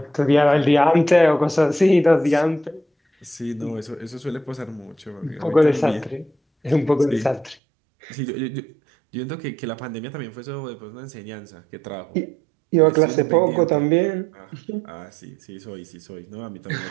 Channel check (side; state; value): left; drops out; at 7.6 s